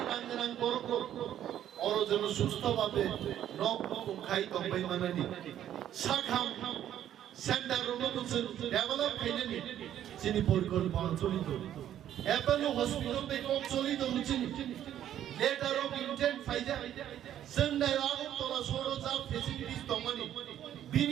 রাঙ্গরাং করক অর যেন সুস্থভাবে রক খাই তবাই মানানি শাখাম সেন্টার রোমোজন ডেভেলপ খাইনি যিনি পরিকল্পনা চলিত অ্যাপোলো হসপিটাল বেকম চলিত হচ্ছেন লেটার অফ ইন্টেন্ট ফাইজা जोंनाय আগরতলা সরজা ফেসিলিটিস দমানি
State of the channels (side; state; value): left; quieter; 11.1 dB